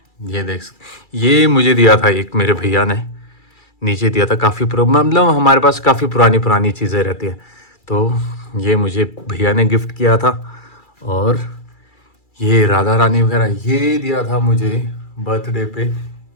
ये देख सकते, ये मुझे दिया था एक मेरे भैया ने, नीचे दिया था। काफ़ी मतलब हमारे पास काफ़ी पुरानी पुरानी चीज़ें रहती हैं, तो ये मुझे भैया ने गिफ्ट किया था। और ये राधा रानी वगैरह ये दिया था मुझे बर्थडे पे,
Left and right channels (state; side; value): late; right; 2.3 ms